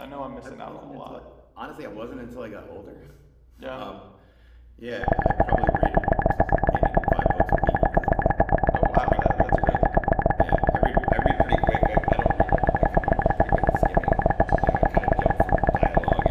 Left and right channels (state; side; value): identical; both; correlation 1.00